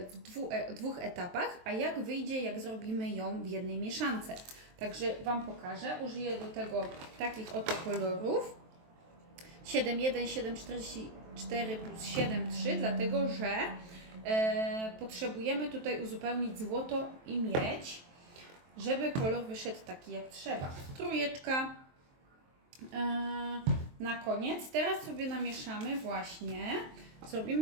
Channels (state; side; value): late; left; 23 ms